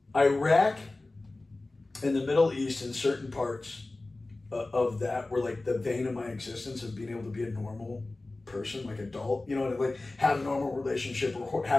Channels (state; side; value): quieter; right; 3.1 dB